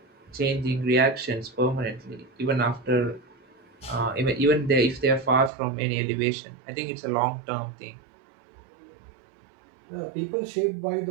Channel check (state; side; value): drops out; left; at 5.5 s